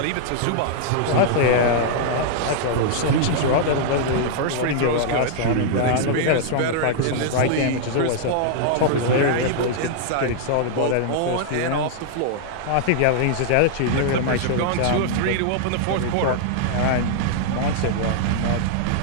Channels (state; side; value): different; both; correlation -0.01